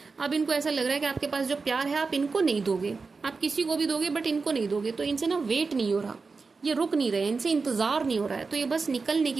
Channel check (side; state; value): left; quieter; 4.4 dB